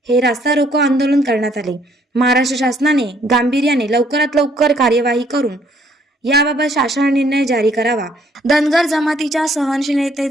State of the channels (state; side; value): normal; both; correlation 0.65